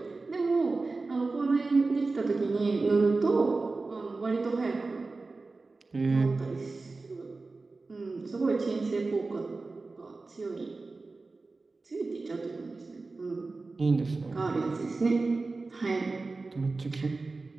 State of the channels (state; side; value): quieter; left; 3.7 dB